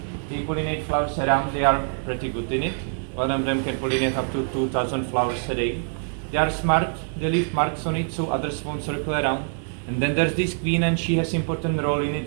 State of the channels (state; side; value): silent; left; 60 dB below the other